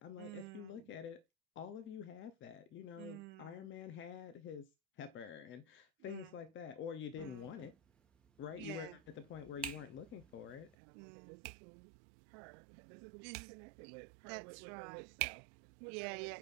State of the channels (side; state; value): left; drops out; at 10.8 s